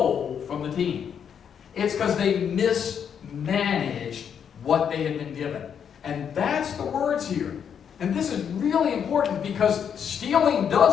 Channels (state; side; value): quieter; right; 7.9 dB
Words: from the team. It's because they mismanaged what they had been given. And that's the words here. And this is really important because stealing